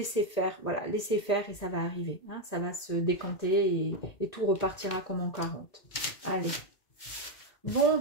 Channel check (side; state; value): right; late; 1.9 ms